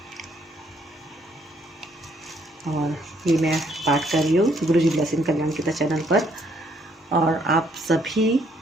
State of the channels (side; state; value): both; normal; correlation 0.68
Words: और ये मैं पाठ कर रही हूँ गुरु जी ब्लेसिंग कल्याण गीता चैनल पर। और आप सभी